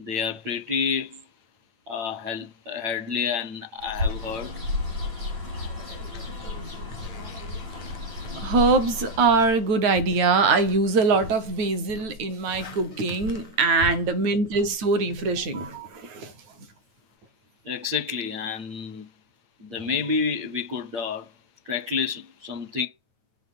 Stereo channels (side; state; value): left; late; 9.0 ms